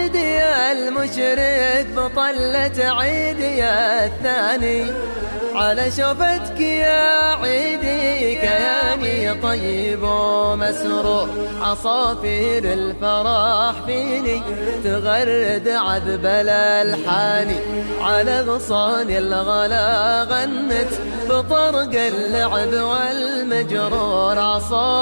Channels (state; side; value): inverted; both; correlation -1.00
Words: يا المشرق بطلة عيدي يا الثاني، على شفتك يا عيدي كياني طيب ومسرور. عصافير الفرح فيني تغرد عذب الألحان، على غصان الغلا غنت بطرق اللعب والمجرور.